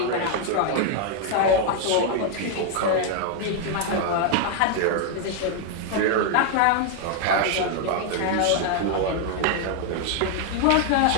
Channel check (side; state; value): both; different; correlation 0.00